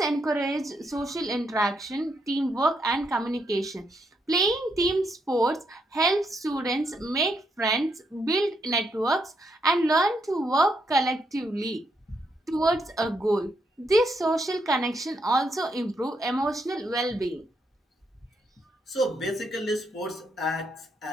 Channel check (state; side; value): normal; both; correlation 0.78